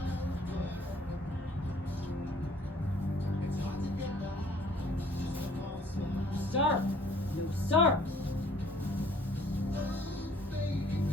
Sir! No, sir!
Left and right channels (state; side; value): normal; both; correlation 0.57